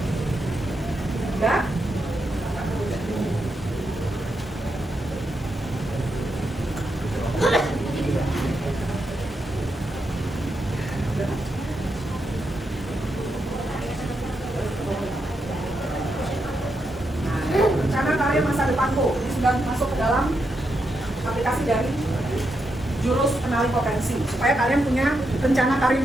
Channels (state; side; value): normal; both; correlation 0.83